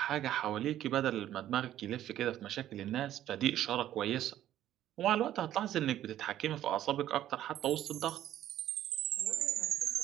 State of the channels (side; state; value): left; quieter; 12.4 dB